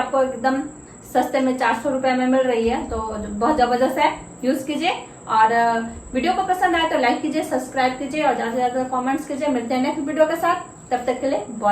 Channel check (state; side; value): identical; both; correlation 1.00